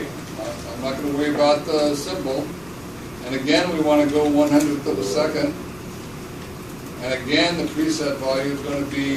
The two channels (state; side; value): noise; left; rumble, 24 dB below the sound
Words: I'm not going to worry about the symbol. And again, we want to go 100th of a second. And again, the preset value is going to